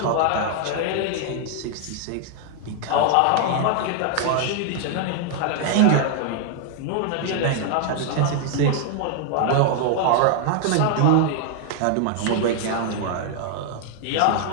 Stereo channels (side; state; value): both; different; correlation 0.00